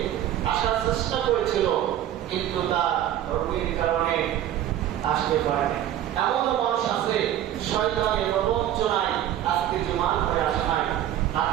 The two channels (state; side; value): quieter; left; 11.9 dB